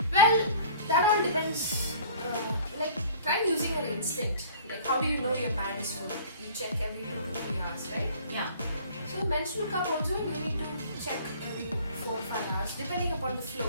Well, that all depends. Try using your instinct. Like, how do you know your pad is full? You check every 2 to 3 hours, right? Yeah. So, menstrual cup also you need to check every 4 or 5 hours, depending upon the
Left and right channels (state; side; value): inverted; both; correlation -0.49